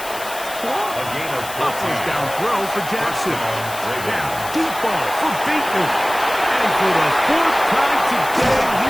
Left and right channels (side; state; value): left; noise; hiss, 12 dB below the sound